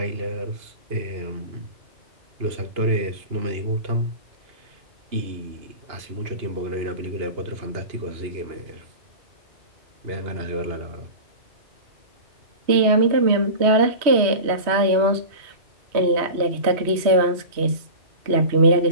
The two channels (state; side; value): late; left; 3.1 ms